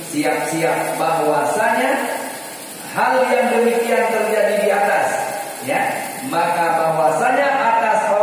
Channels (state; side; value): identical; both; correlation 1.00